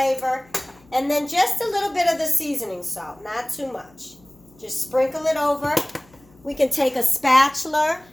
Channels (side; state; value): left; noise; hum, 28 dB below the sound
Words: And then just a little bit of the seasoning salt, not too much. Just sprinkle it over. We can take a spatula